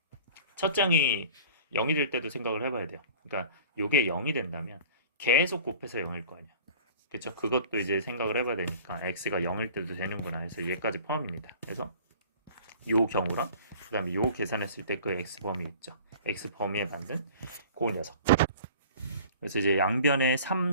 첫 장이 0이 될 때도 생각을 해봐야 돼요. 그러니까 이게 0이 된다면 계속 곱해서 0일 거 아니야. 그렇죠? 그것도 이제 생각을 해봐야 되니까 x가 0일 때도 되는구나 해서 얘까지 포함입니다. 그래서 요 경우랑 그 다음에 요 계산했을 때 그 x 범위 있죠. x 범위에 맞는 그 녀석. 그래서 이제 양변에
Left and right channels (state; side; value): inverted; both; correlation -0.44